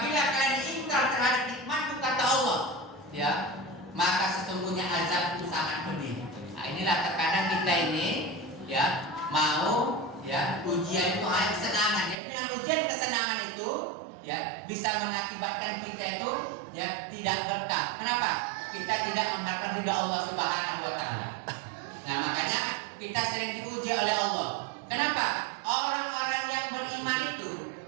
kalian ingkar terhadap nikmatku, kata Allah, ya, maka sesungguhnya azabku sangat pedih. Nah, inilah terkadang kita ini, ya, mau, ya, ujian itu hanya kesenangan. Ya, dengan ujian kesenangan itu, ya, bisa mengakibatkan kita itu, ya, tidak berkah. Kenapa? Kita tidak mengharapkan ridha Allah Subhanahu Wa Taala. Nah, makanya kita sering diuji oleh Allah. Kenapa? Orang-orang yang beriman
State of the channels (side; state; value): left; drops out; at 12.2 s